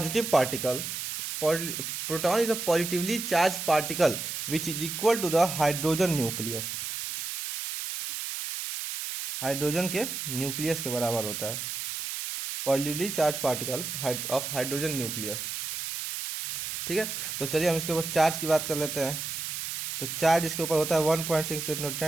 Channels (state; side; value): noise; right; hiss, 5 dB below the sound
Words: particle. Proton is a positively charged particle which is equal to the hydrogen nucleus। Hydrogen के न्यूक्लियस के बराबर होता है, positively charge particle of hydrogen nucleus. ठीक है, तो चलिए हम इसके ऊपर चार्ज की बात कर लेते हैं। तो चार्ज इसके ऊपर होता है 1.6 into